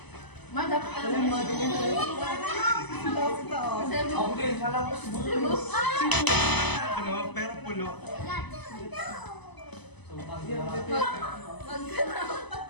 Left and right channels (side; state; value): right; late; 0.99 ms